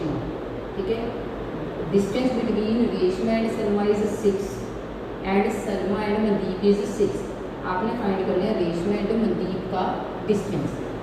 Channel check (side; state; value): both; identical; correlation 1.00